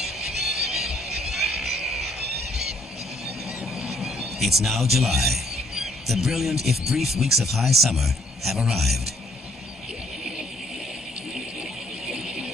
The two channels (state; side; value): normal; both; correlation 0.67